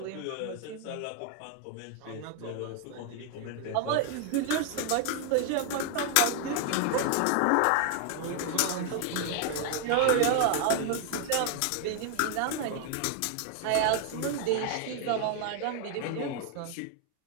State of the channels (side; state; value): both; different; correlation 0.00